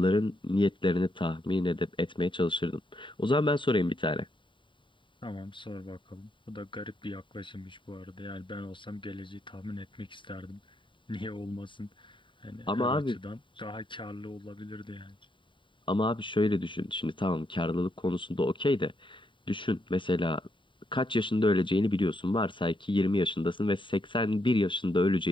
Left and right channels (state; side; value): late; right; 0.24 ms